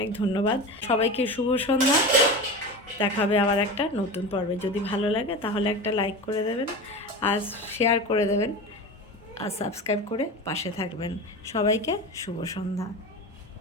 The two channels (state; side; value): normal; both; correlation 0.28